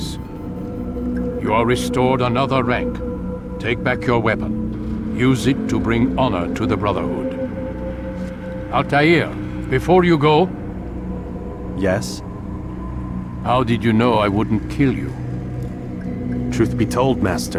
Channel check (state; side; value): identical; both; correlation 1.00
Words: You are restored another rank. Take back your weapon. Use it to bring honor to the Brotherhood. Altair, before you go... Yes? How did you know I wouldn't kill you? Truth be told,